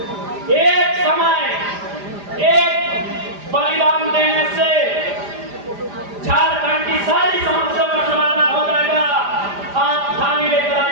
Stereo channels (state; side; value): late; left; 5.0 ms